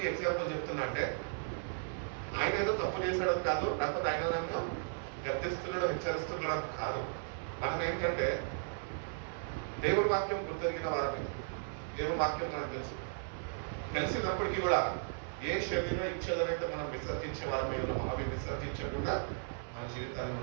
ఈ ఎగ్జాంపుల్ చెప్తున్నా అంటే, ఆయన ఏదో తప్పు చేశాడు కాదు, లేకపోతే ఆయన నన్ను గర్తిస్తున్నాడో హెచ్చరిస్తున్నాడో కాదు. మనం ఏంటంటే దేవుడి వాక్యం గుర్తెరిగిన వారిని, దేవుడి వాక్యం మనకు తెలిసినప్పటికీ కూడా ఏ శరీర ఇచ్చేదనైతే మనం విసర్జించే వారమై ఉన్నామో అవి విసర్జించకుండా మన జీవితాన్ని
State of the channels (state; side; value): silent; left; 54 dB below the other